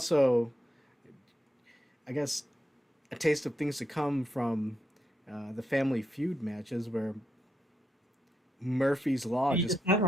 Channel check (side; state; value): both; normal; correlation 0.83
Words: I guess a taste of things to come from the Family Feud matches where Murphy's Law You just just